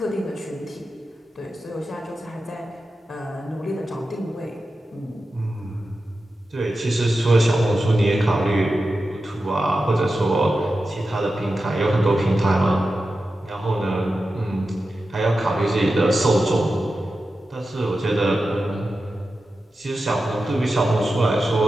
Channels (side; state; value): both; normal; correlation 0.92